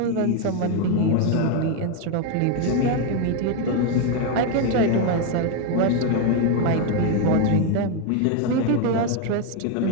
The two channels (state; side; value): different; both; correlation 0.01